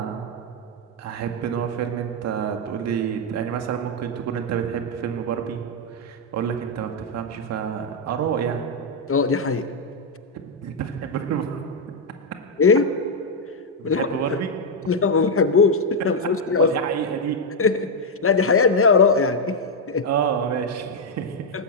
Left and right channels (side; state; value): both; normal; correlation -0.01